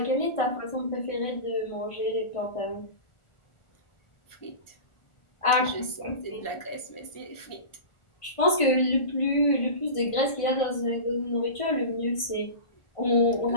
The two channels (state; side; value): late; right; 1.4 ms